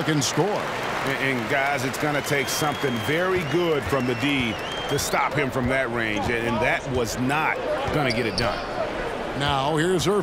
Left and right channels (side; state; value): both; identical; correlation 1.00